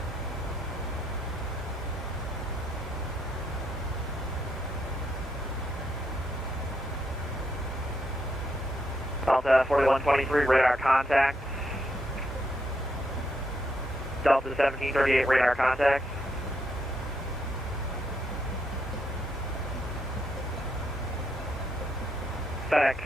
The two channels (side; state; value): both; normal; correlation 0.77